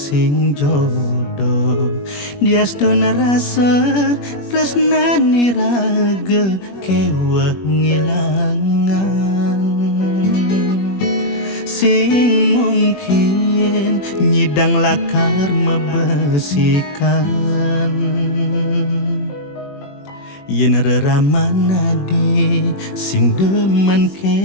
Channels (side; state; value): right; late; 21 ms